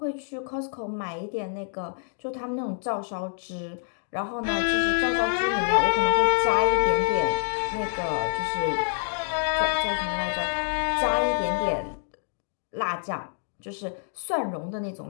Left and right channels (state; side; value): silent; right; digital silence